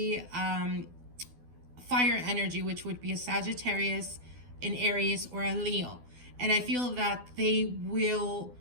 fire energy, which would be a Sagittarius, an Aries, or a Leo. And I feel that they will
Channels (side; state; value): left; late; 12 ms